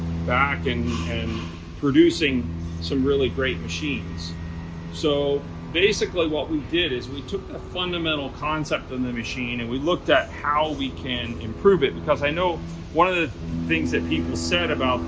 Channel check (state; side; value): identical; both; correlation 1.00